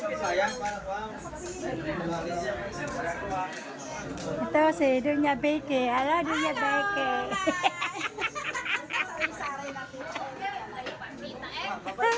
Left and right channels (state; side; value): identical; both; correlation 1.00